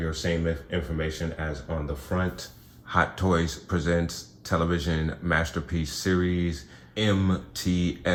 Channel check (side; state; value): both; identical; correlation 1.00